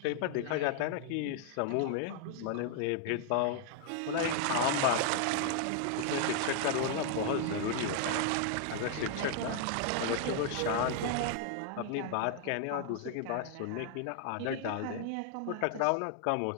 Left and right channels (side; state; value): both; different; correlation 0.00